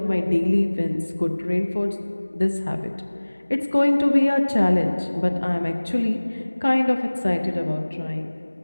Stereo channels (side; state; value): both; inverted; correlation -1.00